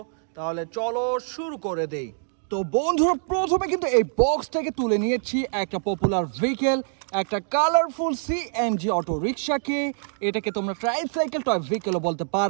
তাহলে চলো শুরু করে দেই। তো বন্ধুরা, প্রথমে কিন্তু এই বক্স থেকে তুলে নিয়েছি একটা পপুলার ভেহিকেল, একটা কালারফুল সিএনজি অটো রিক্সাকে। এটাকে তোমরা ট্রাইসাইকেল টয় ভেহিকেলও বলতে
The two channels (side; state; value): left; silent; digital silence